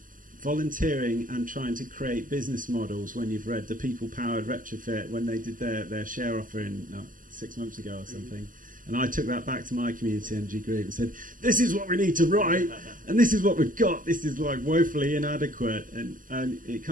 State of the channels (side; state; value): left; late; 0.39 ms